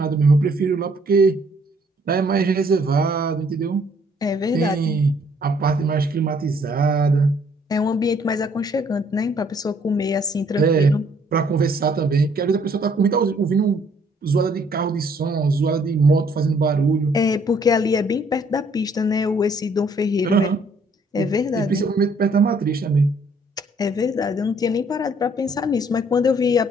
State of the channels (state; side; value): normal; both; correlation 0.64